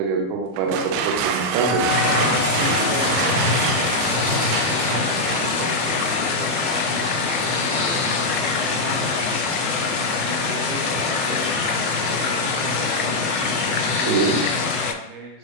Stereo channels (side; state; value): left; late; 31 ms